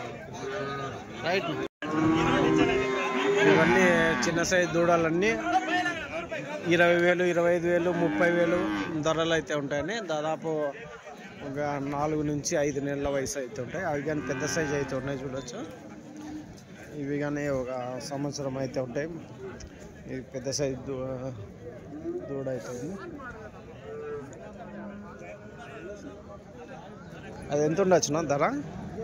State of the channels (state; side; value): identical; both; correlation 1.00